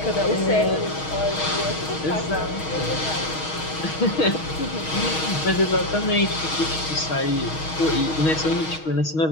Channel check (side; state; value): right; late; 6.3 ms